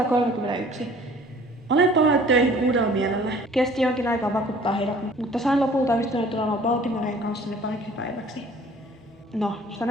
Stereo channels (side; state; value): both; normal; correlation 0.51